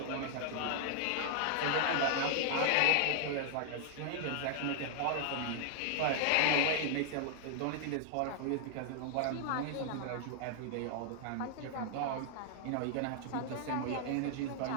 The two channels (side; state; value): both; different; correlation 0.00